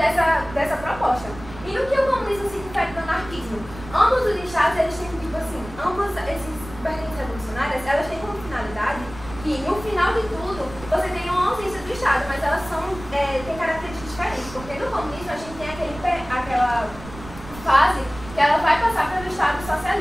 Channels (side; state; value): right; noise; rumble, 15 dB below the sound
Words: proposta. E no que o comunismo se difere do anarquismo? Ambos os estados, eles têm, tipo assim, ambos esses vertentes revolucionárias, elas têm como finalidade que, no final de tudo, você tem uma ausência do Estado, mas elas têm características diferentes, porque no comunismo a gente tem aquela fase que ela vai passar pelo Estado